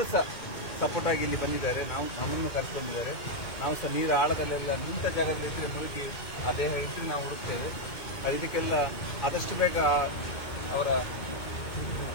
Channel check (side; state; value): right; late; 2.2 ms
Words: ಸಹ ಸಪೋರ್ಟ್ ಆಗಿ ಇಲ್ಲಿ ಬಂದಿದ್ದಾರೆ. ನಮ್ಮನ್ನು ಕರ್ಕೊಂಡಿದ್ದಾರೆ. ನಾವು ಸಹ ನೀರು ಆಳದಲ್ಲೆಲ್ಲ ನಿಂತ ಜಾಗದಲ್ಲಿ ಇದ್ದರೆ ಮುಳುಗಿ ಆ ದೇಹ ಇದ್ದರೆ ನಾವು ಹುಡುಕ್ತೇವೆ. ಇದಕ್ಕೆಲ್ಲ ಆದಷ್ಟು ಬೇಗ ಅವರ